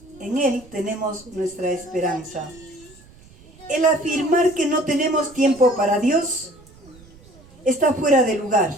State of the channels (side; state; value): right; noise; rumble, 24 dB below the sound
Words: en Él tenemos nuestra esperanza. El afirmar que no tenemos tiempo para Dios está fuera de lugar,